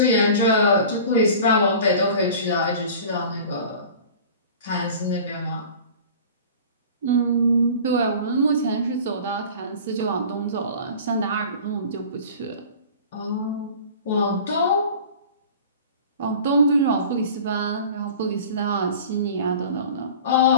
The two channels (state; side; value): inverted; both; correlation -0.41